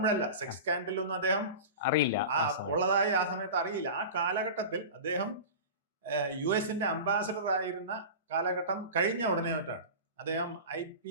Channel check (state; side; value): inverted; both; correlation -0.31